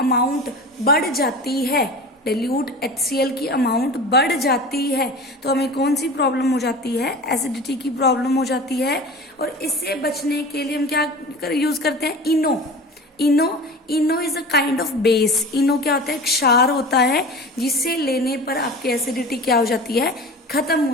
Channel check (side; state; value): both; normal; correlation 0.35